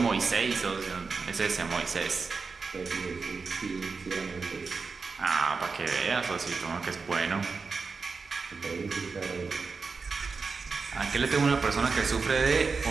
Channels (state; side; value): quieter; left; 4.7 dB